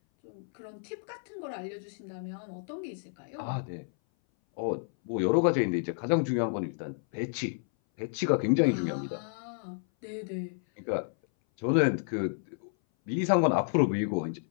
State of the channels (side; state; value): right; silent; 57 dB below the other